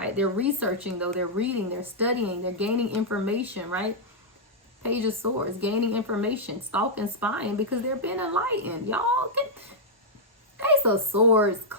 They're researching, though. They're reading, they're studying, they're gaining information, right? Page of Swords, gaining information, stalking, spying, because they're being enlightened. Y'all, Ace of Swords,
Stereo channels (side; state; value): both; normal; correlation -0.07